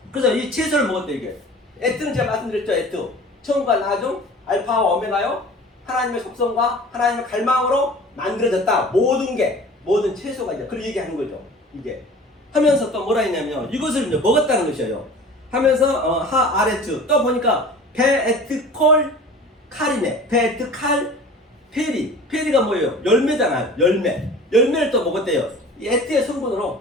그래서 이 채소를 먹었대, 이게. 에트는 제가 말씀드렸죠, 에트. 처음과 나중, 알파와 오메가요. 하나님의 속성과 하나님의 갈망으로 만들어졌다. 모든 채소가 이제 그런 얘기하는 거죠. 이게. 하면서 또 뭐라 했냐면요. 이것을 이제 먹었다는 것이에요. 하면서, 아레트. 또 보니까, 베에트콜 칼이네. 베에트칼 페리. 페리가 뭐예요? 열매잖아요. 열매를 또 먹었대요. 이 에트의 성분으로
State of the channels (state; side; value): normal; both; correlation 0.42